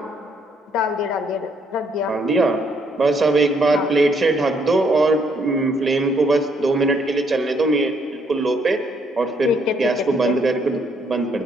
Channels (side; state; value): both; normal; correlation 0.70